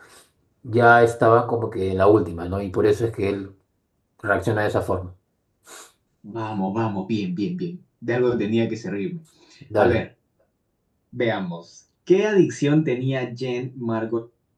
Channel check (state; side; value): identical; both; correlation 1.00